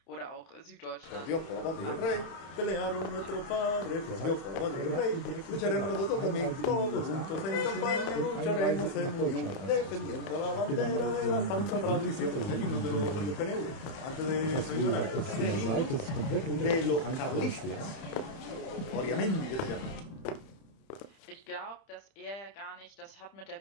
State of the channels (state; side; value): late; right; 31 ms